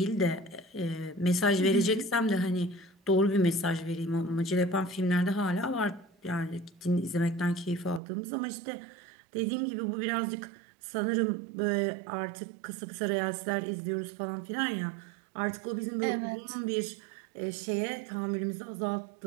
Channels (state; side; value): drops out; left; at 8.0 s